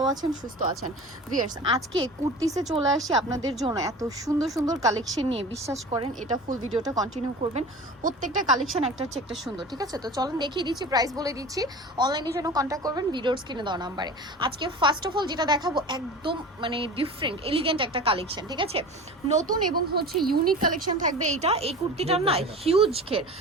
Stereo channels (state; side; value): normal; both; correlation 0.36